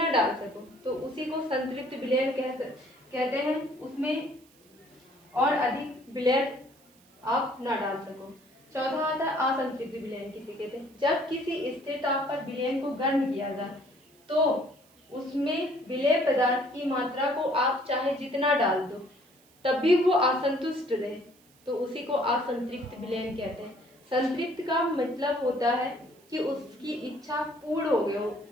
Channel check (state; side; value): noise; right; hiss, 30 dB below the sound